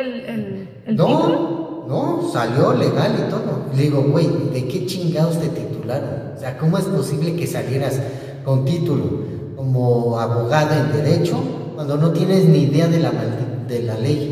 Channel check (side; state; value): both; identical; correlation 1.00